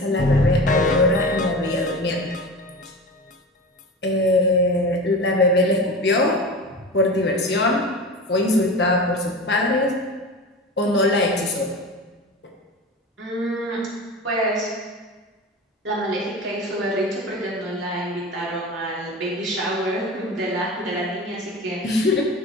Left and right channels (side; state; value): both; normal; correlation 0.31